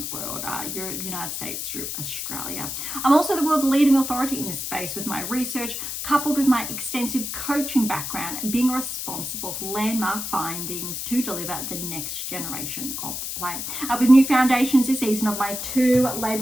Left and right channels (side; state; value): left; noise; hiss, 5 dB below the sound